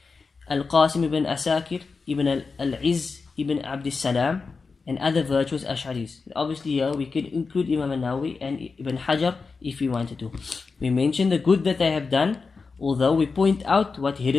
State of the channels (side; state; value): right; quieter; 4.6 dB